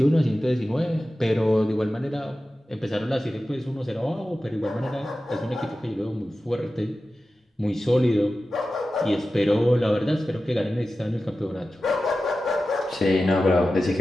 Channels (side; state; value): both; normal; correlation 0.94